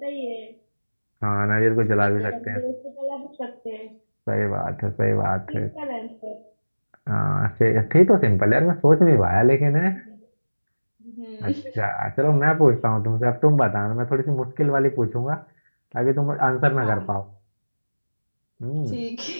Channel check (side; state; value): both; inverted; correlation -1.00